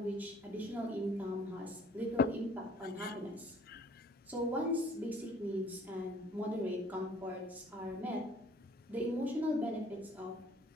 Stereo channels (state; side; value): normal; both; correlation 0.56